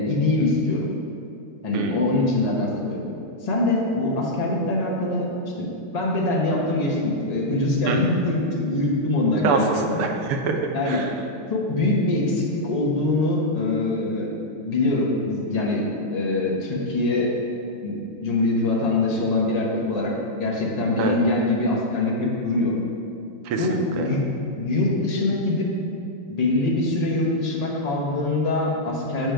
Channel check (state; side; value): normal; both; correlation -0.07